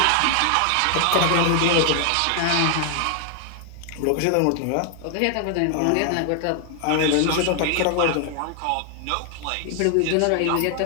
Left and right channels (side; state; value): both; different; correlation 0.00